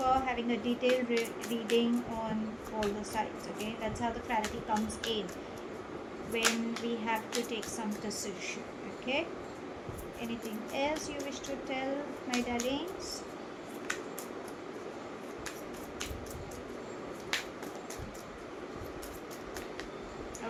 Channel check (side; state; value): both; identical; correlation 1.00